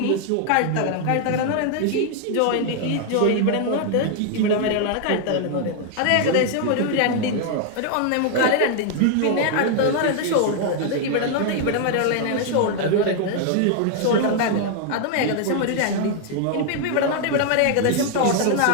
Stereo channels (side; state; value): both; different; correlation 0.00